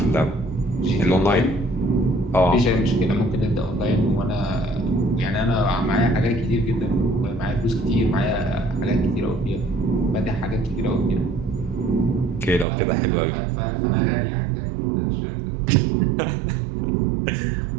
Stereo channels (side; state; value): left; drops out; at 12.7 s